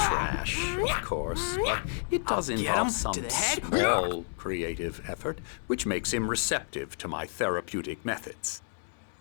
of course, but it does Get involve him some to the head. small creative effort, which makes him receptive to my therapeutic methods.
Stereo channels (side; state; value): right; silent; 57 dB below the other